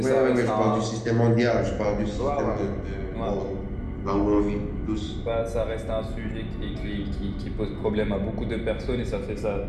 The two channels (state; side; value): identical; both; correlation 1.00